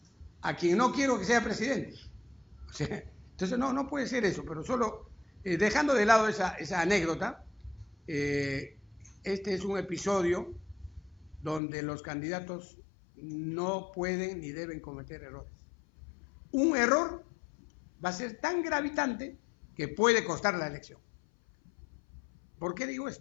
a quien no quiero que sea presidente. O sea, entonces no puede ser eso, pero solo dejando de lado esa anécdota, este es un episodio donde los candidatos no pueden ni deben cometer errores. Un error va a ser tan gravitante que puede costar la elección. ¿Por qué digo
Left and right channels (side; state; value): right; drops out; at 11.6 s